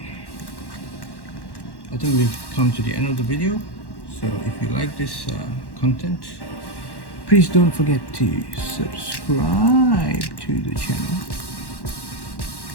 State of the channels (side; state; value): right; late; 1.1 ms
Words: I think we've come to the end of the video. So if you like this content, please don't forget to subscribe to the channel,